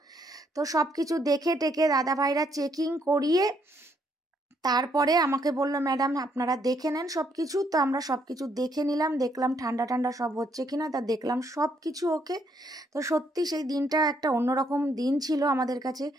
তো সব কিছু দেখে টেকে দাদা ভাইরা চেকিং করিয়ে তারপরে আমাকে বললো, ম্যাডাম আপনারা দেখে নেন সব কিছু। তো আমরা সব কিছু দেখে নিলাম, দেখলাম ঠান্ডা ঠান্ডা সব হচ্ছে কিনা, তা দেখলাম সব কিছু ওকে। তো সত্যি সেই দিনটা একটা অন্যরকম দিন ছিল আমাদের কাছে,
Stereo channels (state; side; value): normal; both; correlation 0.72